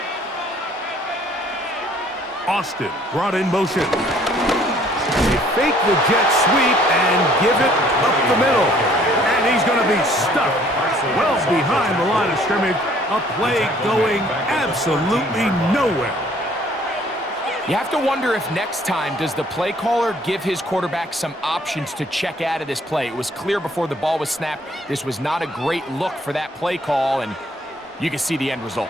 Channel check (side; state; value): both; normal; correlation 0.59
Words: Austin brought in motion. They fake the jet sweep and give it up the middle. And he's going to be stuck well behind the line of scrimmage. A play going absolutely nowhere. You have to wonder if next time does the play caller give his quarterback some options to check out of this play. It was clear before the ball was snapped. This was not a great look for that play call, and you can see the end